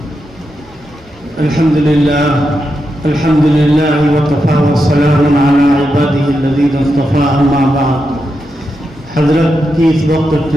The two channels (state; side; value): normal; both; correlation 0.86